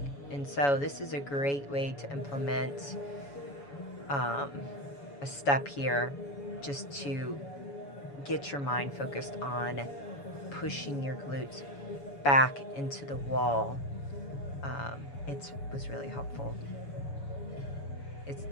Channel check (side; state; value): right; late; 7.1 ms